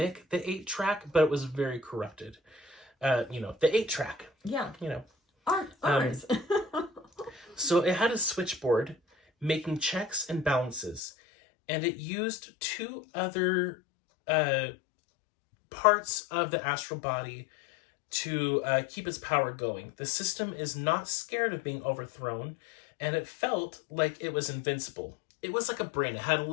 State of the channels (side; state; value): right; drops out; at 11.0 s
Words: the 8-track, but it was very corrupted. The 8-track. Yeah. Ours. Ours. So it had a switchboard making checks and balances, and it used 2 other parts of the astral body to keep its power going. The system is not scared of being overthrown, and it felt like it was invincible. It was like a brain. It had a